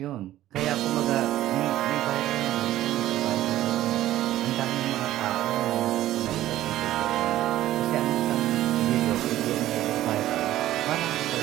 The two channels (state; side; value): quieter; left; 14.1 dB